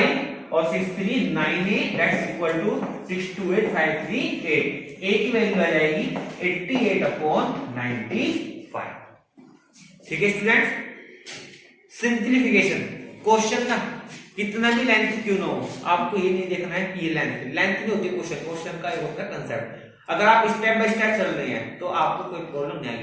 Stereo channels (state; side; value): identical; both; correlation 1.00